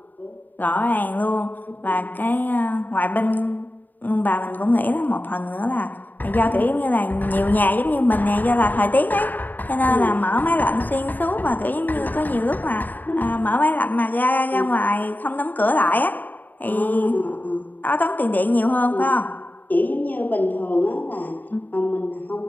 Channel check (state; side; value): late; right; 0.086 ms